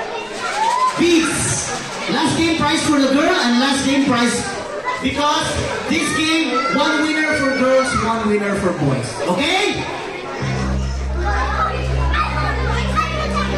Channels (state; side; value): identical; both; correlation 1.00